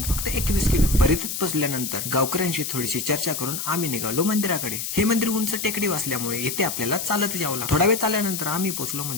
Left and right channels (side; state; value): left; noise; hiss, 4 dB below the sound